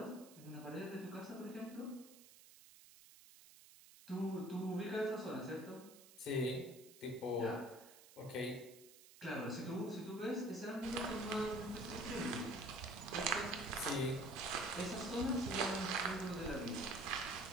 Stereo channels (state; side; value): noise; right; hiss, 20 dB below the sound